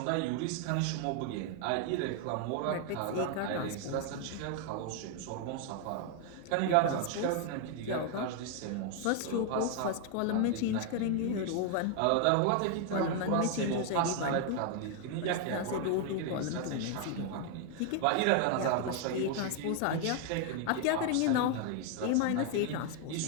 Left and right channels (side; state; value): both; different; correlation 0.00